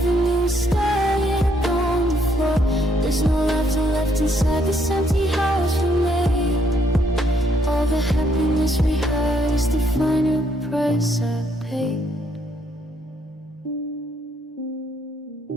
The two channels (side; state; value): both; normal; correlation 0.71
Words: me static on the floor. There's no laughter left inside this empty house we made. All the happiness we had is the final price I paid.